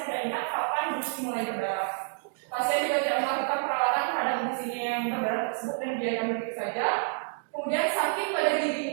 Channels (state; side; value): silent; left; 59 dB below the other